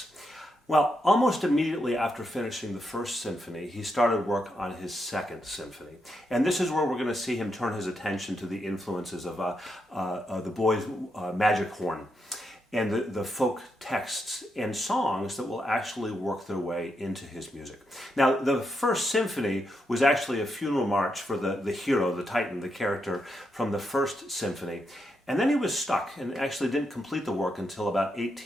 Well, almost immediately after finishing the First Symphony, he started work on his Second Symphony. And this is where we're going to see him turn his attention to the influences of the boy's magic horn, and the folk texts and songs that will actually work their way into his music. Now, the First Symphony was actually a funeral march for the hero, the Titan, the character from the First Symphony. And then he was stuck and actually didn't complete the work until about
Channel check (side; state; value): both; normal; correlation 0.82